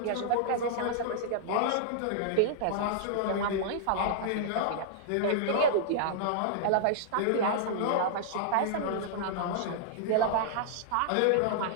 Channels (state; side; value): different; both; correlation -0.01